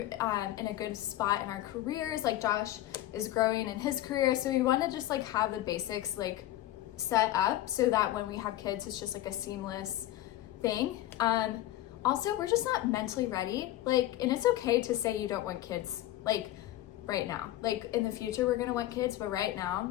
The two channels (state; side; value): quieter; right; 14.6 dB